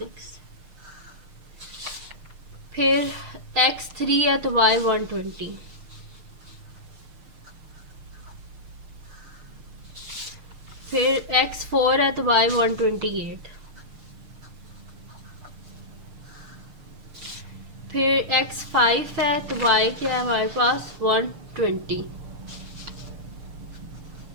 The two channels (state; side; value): late; left; 6.5 ms